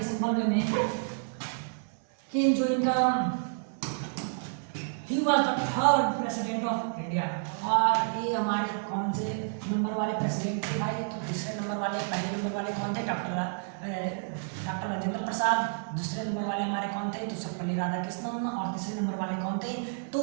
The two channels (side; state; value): left; silent; 57 dB below the other